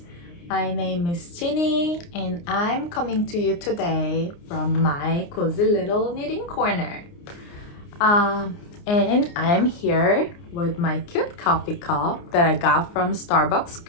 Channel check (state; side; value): late; right; 29 ms